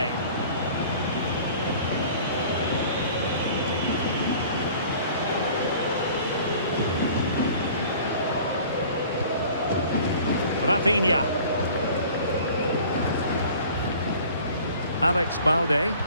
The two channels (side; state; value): both; inverted; correlation -0.47